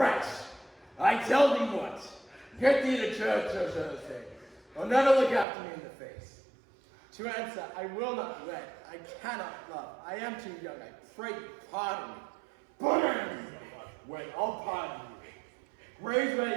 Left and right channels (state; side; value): drops out; left; at 5.5 s